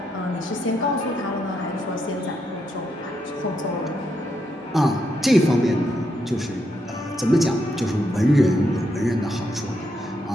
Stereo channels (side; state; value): both; normal; correlation 0.80